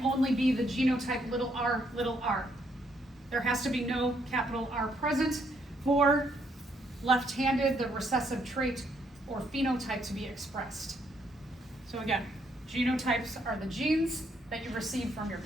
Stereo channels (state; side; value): normal; both; correlation 0.72